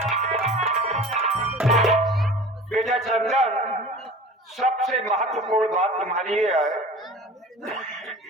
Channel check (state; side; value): normal; both; correlation 0.40